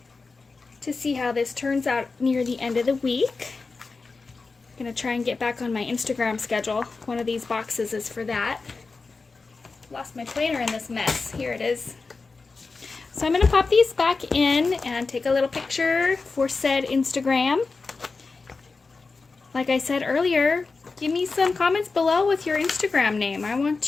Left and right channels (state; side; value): quieter; right; 4.1 dB